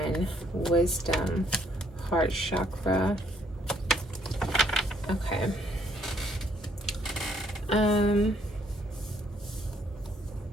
Wisdom. Heart chakra. Okay.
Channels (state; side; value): normal; both; correlation 0.67